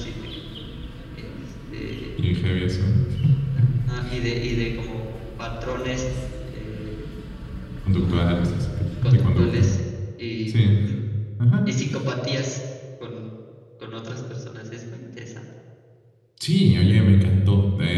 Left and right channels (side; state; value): both; identical; correlation 1.00